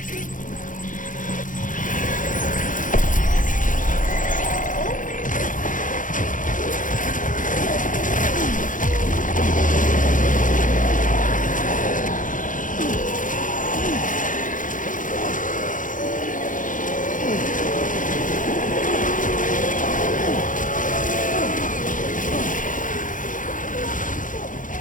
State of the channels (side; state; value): right; late; 0.38 ms